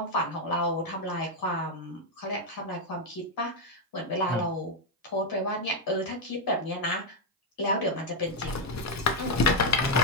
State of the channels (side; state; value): both; normal; correlation 0.01